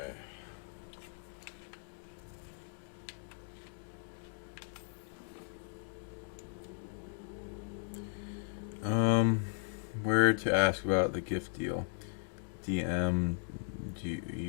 Where to ask about the gift deal? DM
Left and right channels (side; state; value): right; silent; digital silence